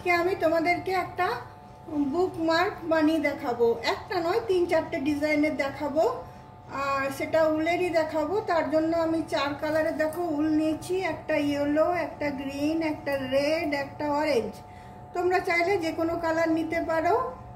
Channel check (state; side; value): identical; both; correlation 1.00